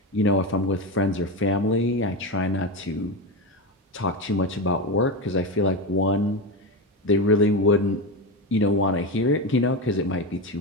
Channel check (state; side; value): normal; both; correlation 0.17